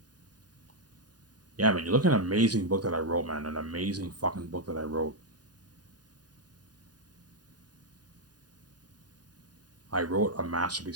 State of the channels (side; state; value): left; late; 0.69 ms